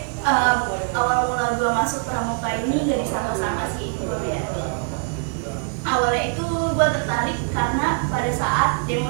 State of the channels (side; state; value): left; quieter; 39.3 dB